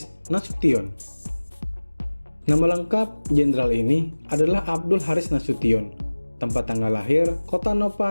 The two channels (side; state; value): both; inverted; correlation -1.00